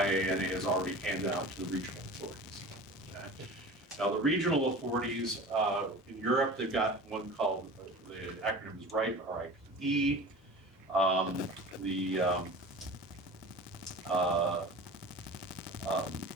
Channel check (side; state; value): both; normal; correlation 0.37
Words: has already handed out to the regional authorities. Okay. Now the regional authorities in Europe, they've got one called, the acronym is RIPE, R-I-P-E.